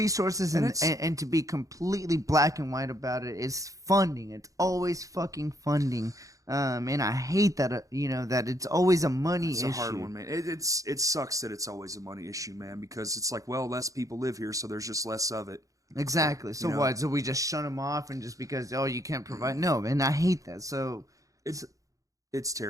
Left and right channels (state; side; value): late; left; 0.16 ms